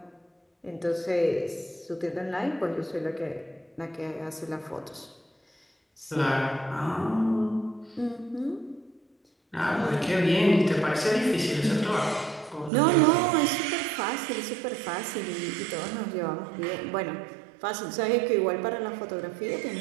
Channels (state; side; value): drops out; left; at 12.7 s